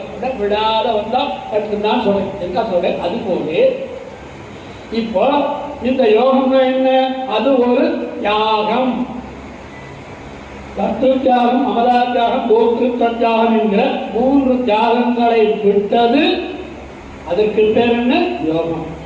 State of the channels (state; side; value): identical; both; correlation 1.00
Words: விடாத வந்தா கற்றுதான் சொல்றேன். என்ன சொல்றேன்? அது போது இப்போ இந்த யோகம் என்ன? அது ஒரு தியாகம். தத்துவ தியாகம், அமலா தியாகம், போக்கு தியாகம் என்கிற 3 தியாகங்களை விட்டது. அதற்கு பேர் என்ன? யோகம்.